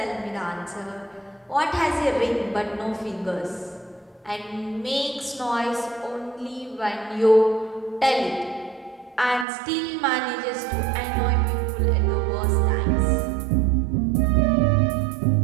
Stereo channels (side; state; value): left; drops out; at 9.5 s